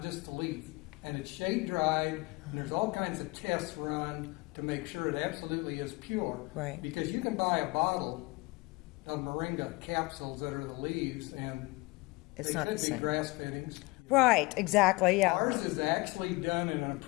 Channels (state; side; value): quieter; right; 24.1 dB